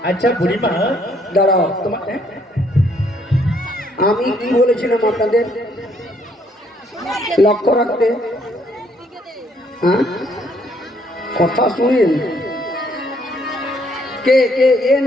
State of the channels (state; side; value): normal; both; correlation 0.68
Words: আচ্ছা বুড়িমা দাঁড়াও, তোমার আমি কি বলেছিলাম আপনাদের লক্ষ্য রাখতে? হ্যাঁ, কথা শুনেন। কে কে এ